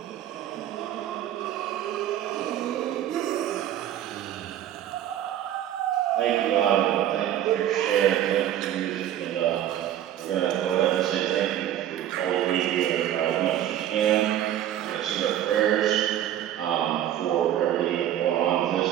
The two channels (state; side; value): quieter; left; 11.5 dB